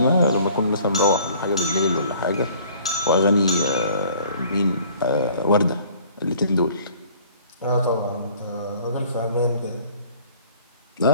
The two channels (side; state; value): both; inverted; correlation -0.54